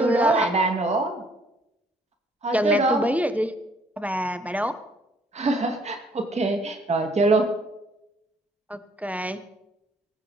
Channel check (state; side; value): normal; both; correlation 0.62